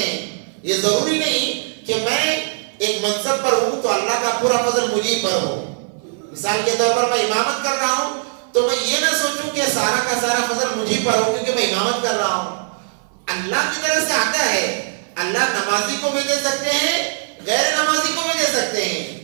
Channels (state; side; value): silent; left; 58 dB below the other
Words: یہ ضروری نہیں کہ میں ایک منصب پر ہوں تو اللہ کا پورا فضل مجھے پر ہو. مثال کے طور پر میں امامت کر رہا ہوں تو میں یہ نہ سوچوں کہ سارا کا سارا فضل مجھے پر ہو کیونکہ میں امامت کر رہا ہوں. اللہ کی طرف سے آتا ہے. اللہ نمازی کو بھی دے سکتے ہیں، غیر نمازی کو بھی دے سکتے ہیں،